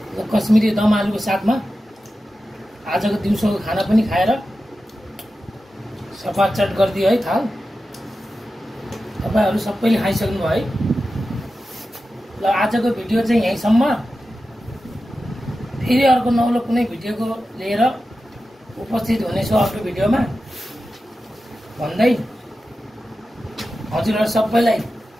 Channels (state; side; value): normal; both; correlation 0.92